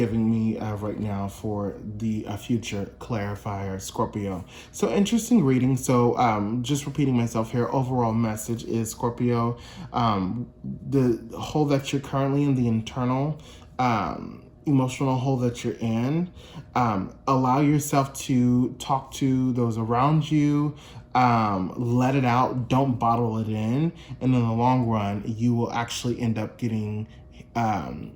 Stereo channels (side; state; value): both; identical; correlation 1.00